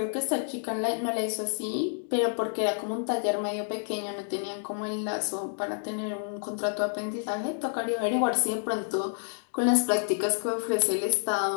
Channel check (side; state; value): right; silent; digital silence